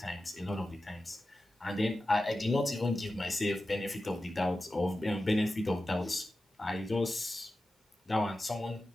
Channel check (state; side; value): normal; both; correlation 0.93